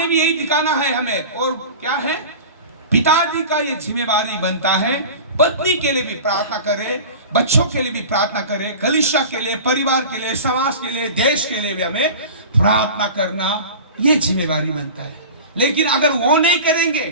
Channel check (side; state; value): both; inverted; correlation -0.35